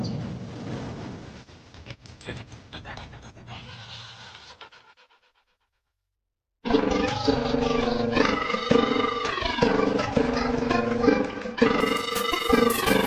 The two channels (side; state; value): both; identical; correlation 1.00